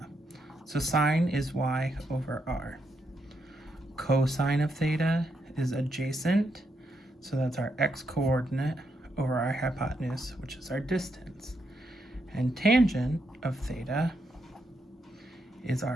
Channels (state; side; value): normal; both; correlation 0.80